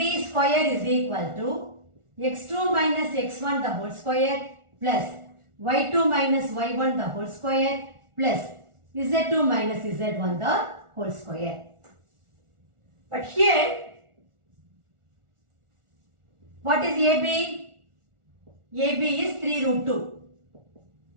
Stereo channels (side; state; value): left; late; 1.4 ms